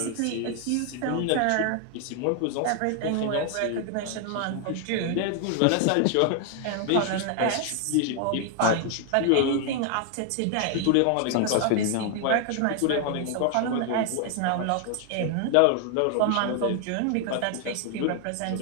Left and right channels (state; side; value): different; both; correlation 0.00